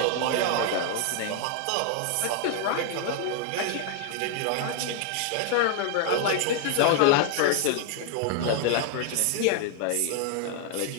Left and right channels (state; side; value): different; both; correlation 0.00